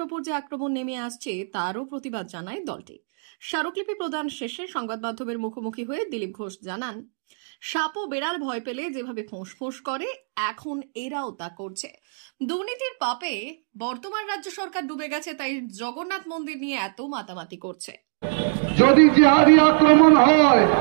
ওপর যে আক্রমণ নেমে আসছে তারও প্রতিবাদ জানায় দলটি। স্মারকলিপি প্রদান শেষে সংবাদ মাধ্যমের মুখোমুখি হয়ে দিলীপ ঘোষ জানান, সাপ ও বেড়াল ভয় পেলে যেভাবে ফোঁস করে এখন এরাও তা করছে। দুর্নীতির পাপে বর্তমান রাজ্য সরকার ডুবে গেছে, তাই জগন্নাথ মন্দির নিয়ে এত মাতামাতি করছে। যদি জিহাদি আক্রমণ হয়,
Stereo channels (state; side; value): silent; left; digital silence